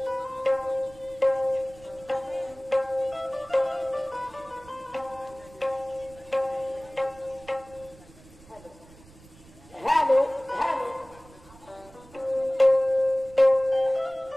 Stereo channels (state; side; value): noise; right; rumble, 23 dB below the sound